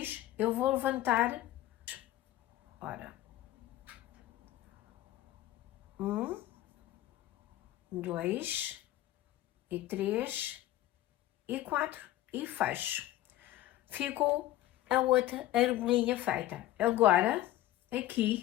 eu vou levantar, ora, 1, 2 e 3 e 4 e fecho. Ficou a outra argolinha feita. Agora,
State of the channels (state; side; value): quieter; right; 14.6 dB